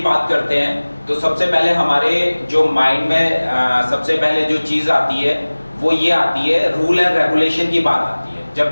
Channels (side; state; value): both; inverted; correlation -1.00